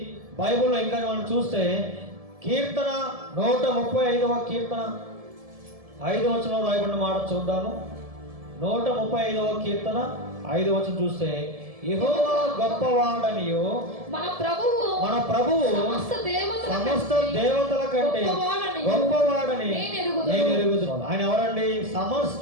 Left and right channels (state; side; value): late; left; 1.7 ms